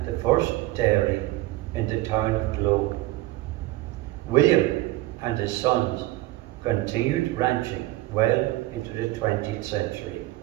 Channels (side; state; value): left; quieter; 17.6 dB